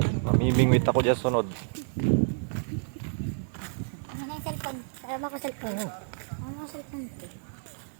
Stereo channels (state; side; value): silent; left; 58 dB below the other